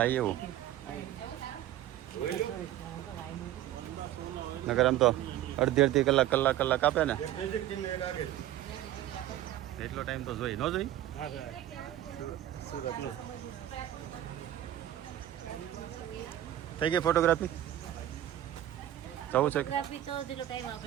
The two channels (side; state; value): left; quieter; 12.9 dB